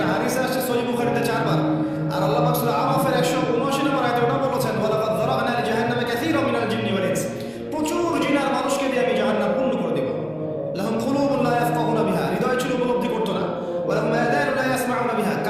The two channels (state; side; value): identical; both; correlation 1.00